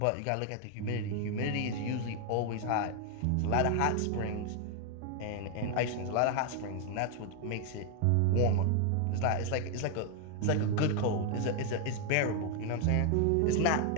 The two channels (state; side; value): different; both; correlation 0.00